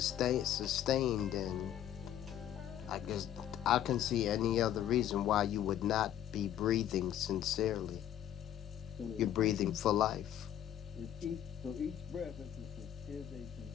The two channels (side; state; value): right; quieter; 11.1 dB